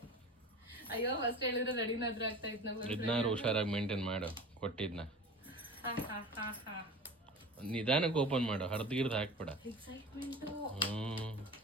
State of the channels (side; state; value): both; normal; correlation 0.36